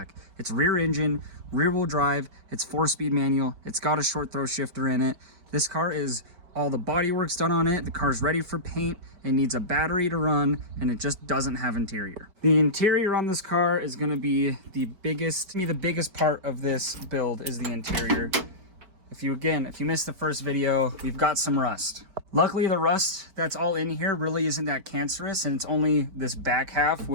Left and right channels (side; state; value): left; late; 5.2 ms